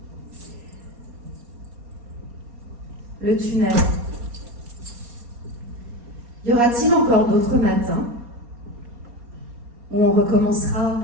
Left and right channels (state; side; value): late; left; 4.2 ms